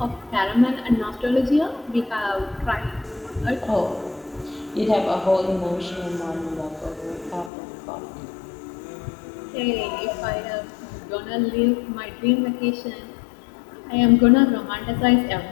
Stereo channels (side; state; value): right; drops out; at 7.5 s